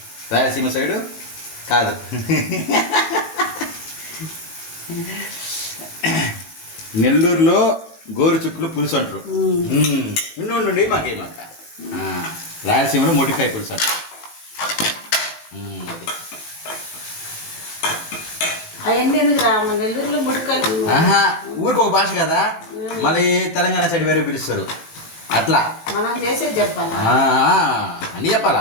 రాయలసీమ సైడు కాదు. నెల్లూరులో గోరుచిక్కులు పులుసు అంటారు. నుండి మాకేమాక రాయలసీమలో మొటికాయ పులుసు అంటారు. నెల్లూరులో ఊరికి ఒక భాష కదా. మళ్ళీ తెలంగాణ సైడ్ వేరే పిలుస్తారు. అట్లా మనం చేసేది చెప్పాలా, అన్నీ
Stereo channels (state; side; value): late; right; 19 ms